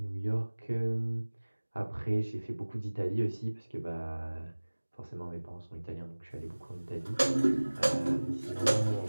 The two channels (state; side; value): inverted; both; correlation -1.00